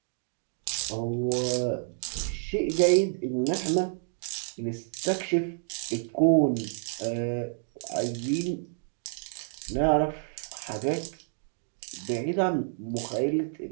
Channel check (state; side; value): silent; left; digital silence